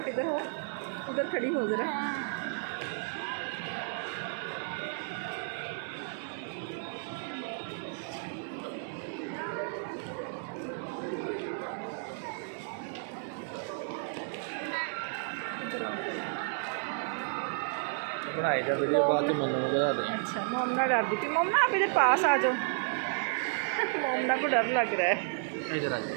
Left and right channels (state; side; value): silent; left; 56 dB below the other